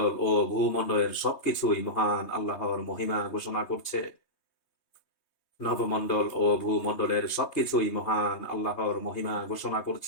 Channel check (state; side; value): late; right; 3.2 ms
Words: ও ভূমণ্ডলের সবকিছুই মহান আল্লাহর মহিমা ঘোষণা করছে। নবমণ্ডল ও ভূমণ্ডলের সবকিছুই মহান আল্লাহর মহিমা ঘোষণা